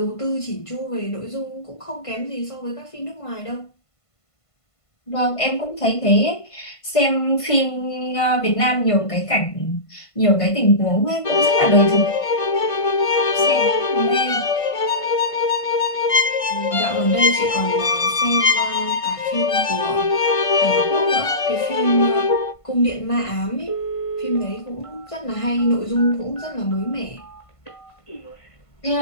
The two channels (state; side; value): late; right; 1.5 ms